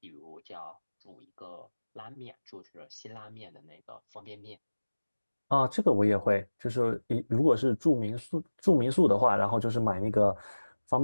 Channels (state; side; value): inverted; both; correlation -1.00